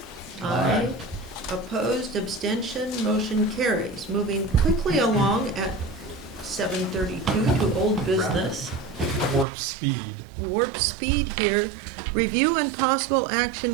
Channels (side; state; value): left; drops out; at 9.5 s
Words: Aye. Opposed, abstention, motion carries. Moving quickly along at 7:32 to old business. Warp speed. Warp speed here. Review and possible